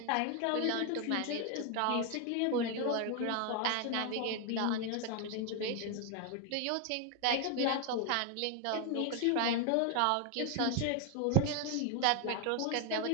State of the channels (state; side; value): different; both; correlation 0.01